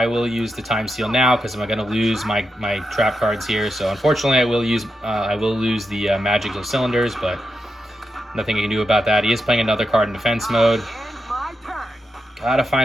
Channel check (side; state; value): both; normal; correlation 0.87